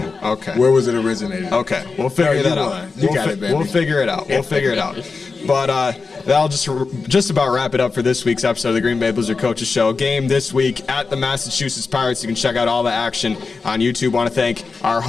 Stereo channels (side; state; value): right; quieter; 4.4 dB